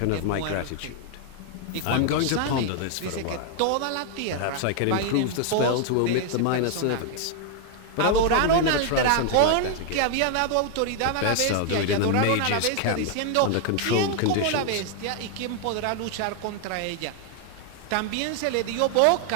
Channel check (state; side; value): different; both; correlation 0.00